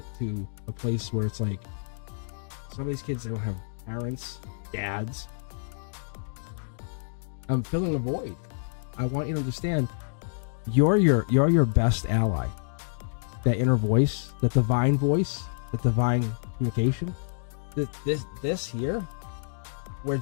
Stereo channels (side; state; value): right; silent; digital silence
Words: to a place where it's like, some of these kids, they don't have parents, dads. I'm filling a void. I want you to understand, you're your best ally. That inner voice, that divine communication. This here, we're